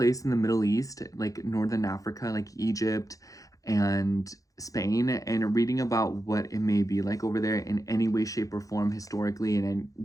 in the Middle East, like Northern Africa, like Egypt and Spain, and reading about what it may be like over there in any way, shape, or form historically, and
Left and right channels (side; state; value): right; late; 0.17 ms